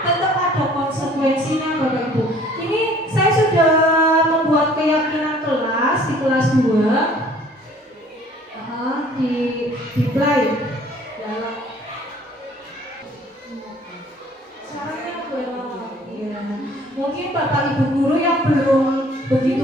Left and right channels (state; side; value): normal; both; correlation 0.55